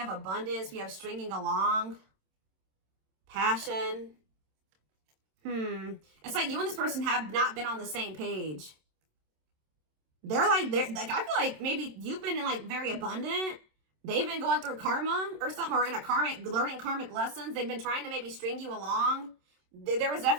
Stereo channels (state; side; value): late; left; 27 ms